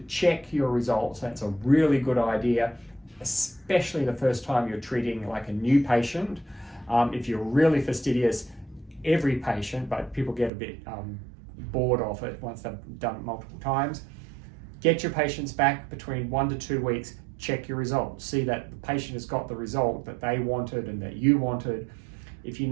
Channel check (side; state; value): left; drops out; at 10.5 s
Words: check your results, that's a really good idea, especially the first time you're treating like a new patient. If you're really fastidious, every patient, but people get a bit bored of it once they've done it multiple times. Get your patients back between 1 to 2 weeks, check your results. See that the patient has got the result that they wanted and that you wanted. If you